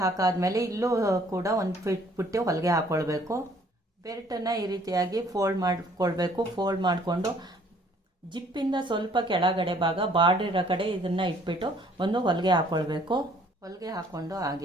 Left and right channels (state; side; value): normal; both; correlation 0.59